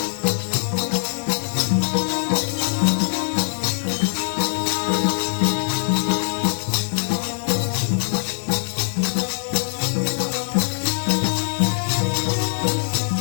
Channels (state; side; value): silent; right; 64 dB below the other